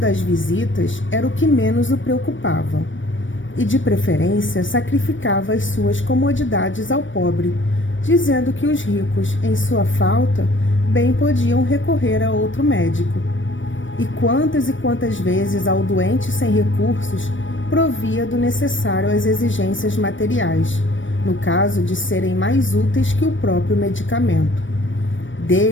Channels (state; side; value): late; right; 0.56 ms